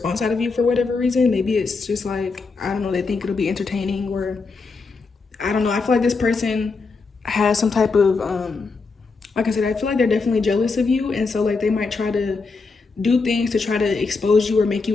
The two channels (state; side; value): quieter; right; 4.3 dB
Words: out of you for whatever reason. Maybe it's just like, I don't know, they think it'll be entertaining, or I don't know. I feel like this person has some type of, like I said, I feel like they're definitely jealous of you. And so like they might try to do things to try to expose you or make